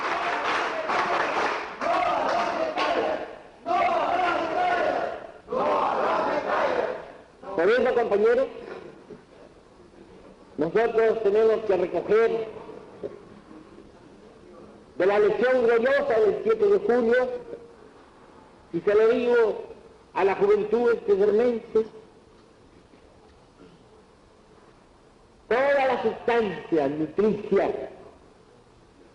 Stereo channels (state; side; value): identical; both; correlation 1.00